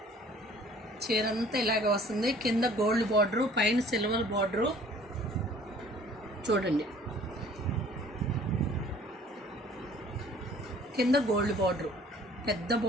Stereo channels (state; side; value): normal; both; correlation 0.53